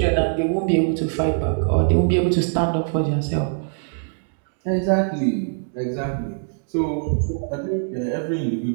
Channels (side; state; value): left; silent; digital silence